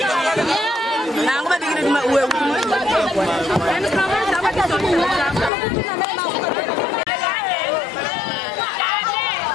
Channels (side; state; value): right; drops out; at 5.5 s